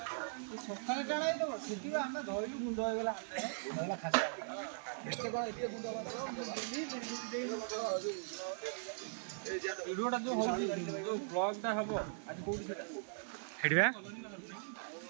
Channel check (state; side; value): silent; left; 51 dB below the other